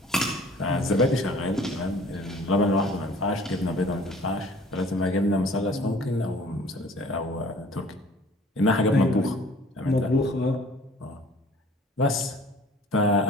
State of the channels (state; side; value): normal; both; correlation 0.50